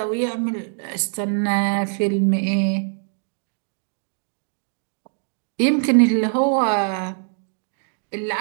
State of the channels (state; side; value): silent; left; digital silence